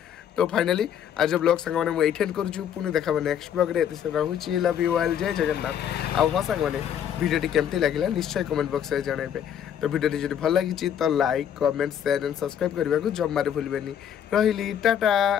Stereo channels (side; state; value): right; quieter; 9.2 dB